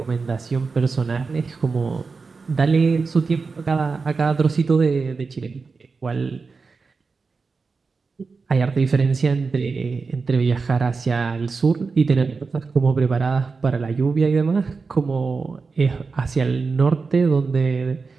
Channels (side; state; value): left; quieter; 4.5 dB